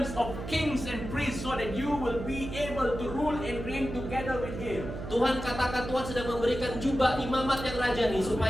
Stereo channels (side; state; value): right; noise; hum, 8 dB below the sound